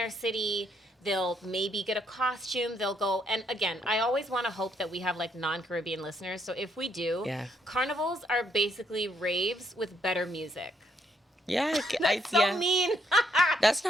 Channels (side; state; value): both; normal; correlation 0.73